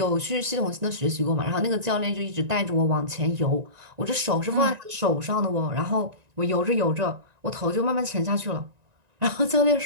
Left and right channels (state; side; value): late; left; 1.9 ms